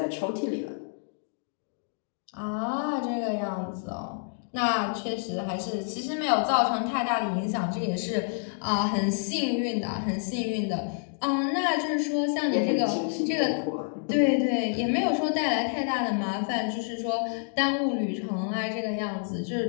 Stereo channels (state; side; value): silent; right; digital silence